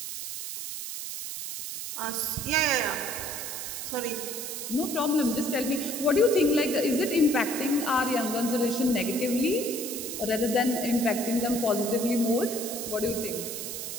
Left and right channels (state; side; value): noise; right; hiss, 6 dB below the sound